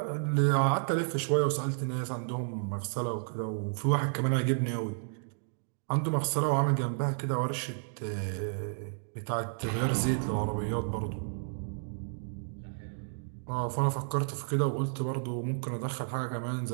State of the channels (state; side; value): silent; left; digital silence